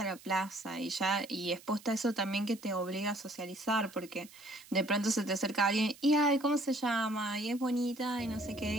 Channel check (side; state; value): right; noise; hiss, 21 dB below the sound